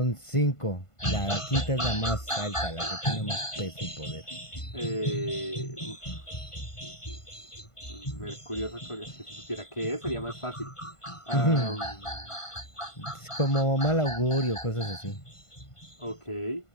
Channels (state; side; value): late; right; 1.5 ms